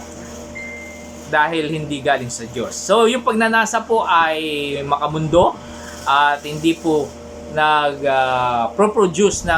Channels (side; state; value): both; identical; correlation 1.00